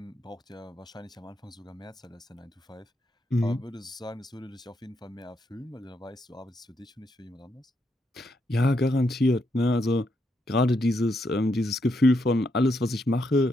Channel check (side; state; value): both; normal; correlation 0.79